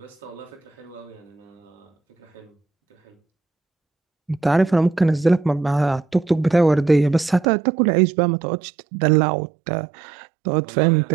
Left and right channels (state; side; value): drops out; left; at 7.5 s